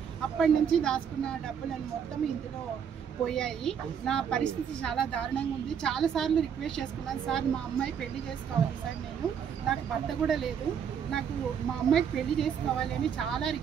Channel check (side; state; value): left; quieter; 7.8 dB